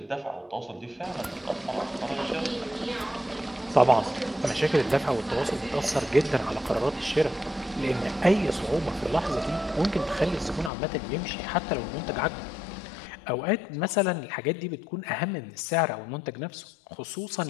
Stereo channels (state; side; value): drops out; right; at 10.7 s